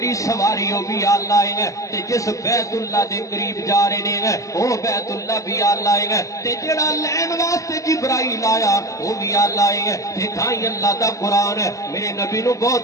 سواری وہ بھی آلہ ہے تے جس بیت اللہ دے قریب جا رہے ہیں وہ بیت اللہ بھی آلہ ہے تے جڑا لین واسطے جبرائیل آیا وہ بھی آلہ ہے تے تھائی اللہ دا قرآن ہے میرے نبی نو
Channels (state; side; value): late; right; 0.16 ms